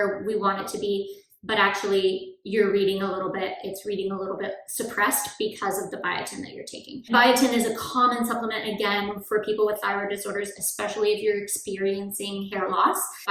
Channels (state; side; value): identical; both; correlation 1.00